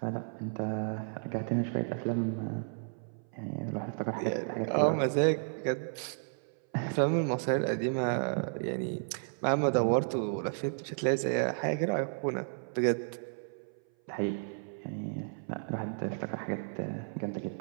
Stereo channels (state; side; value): silent; left; 56 dB below the other